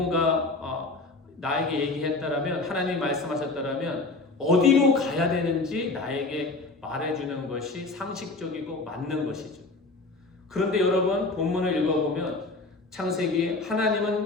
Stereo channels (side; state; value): right; quieter; 3.4 dB